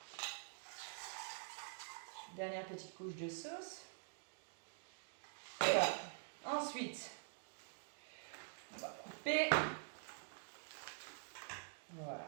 Dernière petite couche de sauce. Voilà. Ensuite, on va couper. Voilà.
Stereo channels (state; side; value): silent; left; digital silence